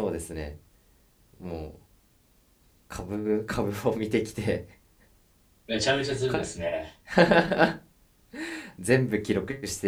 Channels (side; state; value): both; identical; correlation 1.00